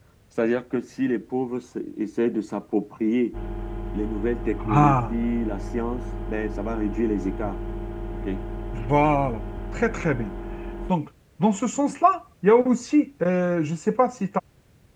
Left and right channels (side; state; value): both; identical; correlation 1.00